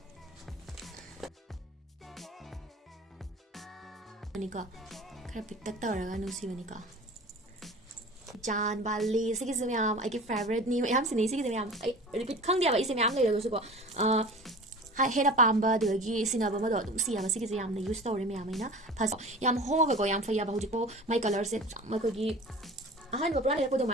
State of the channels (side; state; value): both; normal; correlation 0.38